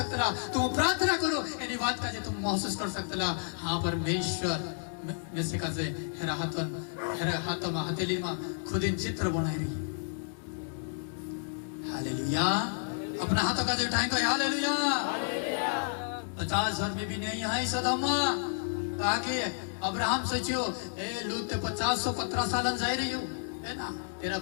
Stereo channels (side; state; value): right; silent; digital silence